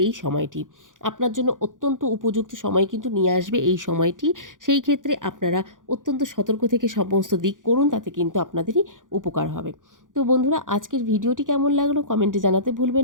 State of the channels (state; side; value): late; left; 0.88 ms